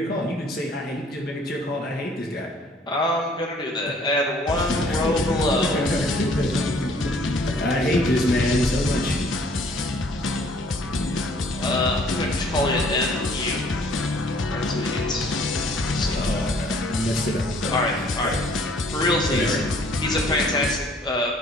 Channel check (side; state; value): both; normal; correlation 0.58